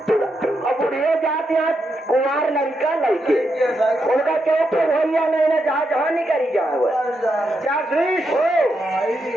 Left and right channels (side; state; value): both; normal; correlation 0.83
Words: बुढ़िया जाते हैं कुमार लड़का लड़के उनका चौक पे भैया नहीं ना जहाँ जहाँ नहीं करी जाए वो क्या सुनीश हो